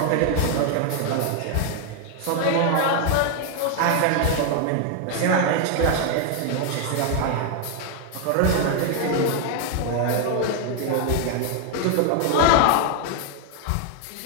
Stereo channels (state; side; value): different; both; correlation 0.00